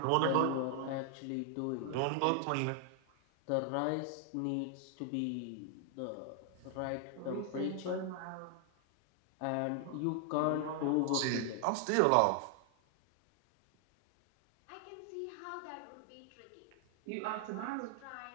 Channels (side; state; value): both; different; correlation 0.00